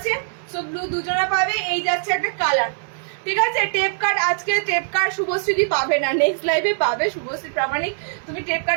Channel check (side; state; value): left; silent; digital silence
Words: সো ব্লু দুজনা পাবে। এই যাচ্ছে একটা কালার, ঠিক আছে। টেপ কার্ড, আজকে টেপ কার্ড শুভশ্রী পাবে না, নেক্সট লাইভে পাবে। শুভশ্রী প্রামাণিক, তুমি টেপ